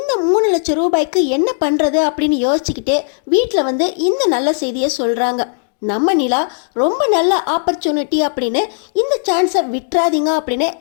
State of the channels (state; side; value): silent; right; digital silence